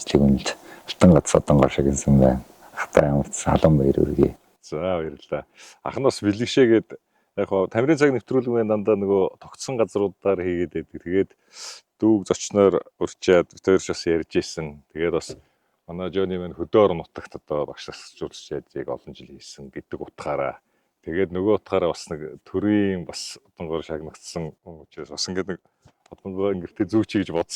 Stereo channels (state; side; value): identical; both; correlation 1.00